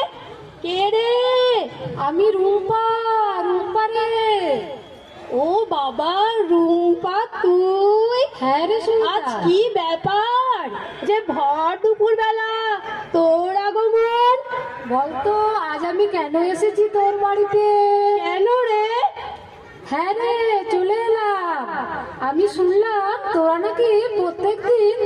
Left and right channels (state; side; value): identical; both; correlation 1.00